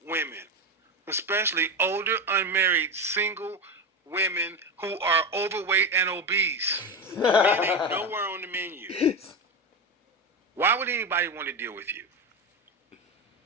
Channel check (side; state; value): both; normal; correlation 0.17